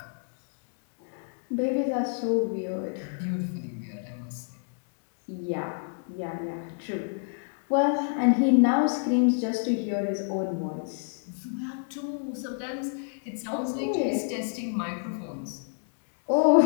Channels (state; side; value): silent; right; digital silence